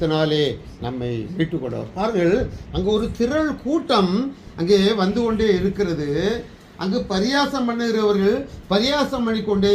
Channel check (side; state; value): both; identical; correlation 1.00